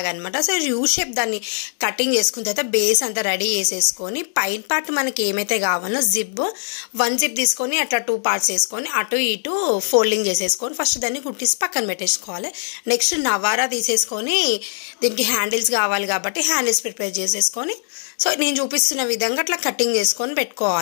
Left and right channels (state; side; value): silent; right; 65 dB below the other